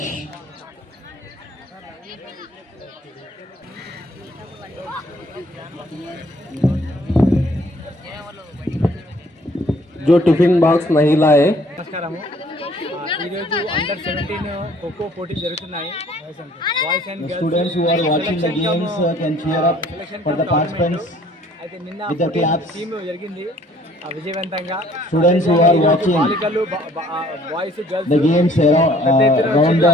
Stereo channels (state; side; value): normal; both; correlation 0.58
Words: जो टिफिन बॉक्स नहीं लाए నమస్కారము. ఈరోజు అండర్ 17 ఖోఖో పోటీ జరుగుతున్నాయి. Boys and girls students who are watching the games can cheer up for the participants అయితే నిన్న with the claps. Team జరిగింది. విజయవంతంగా Students who are watching బాలికలు boys girls the games around